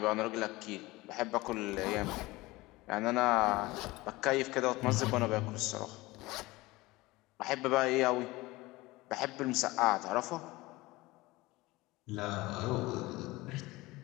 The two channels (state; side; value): quieter; right; 20.5 dB